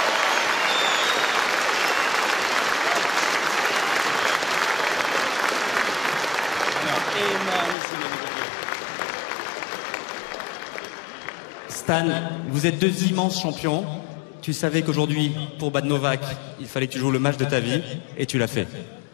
Stan, vous êtes deux immenses champions. Tu savais qu'aujourd'hui, pour Bad Novak, il fallait que tu joues le match de ta vie, et tu l'as fait.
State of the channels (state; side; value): drops out; right; at 7.8 s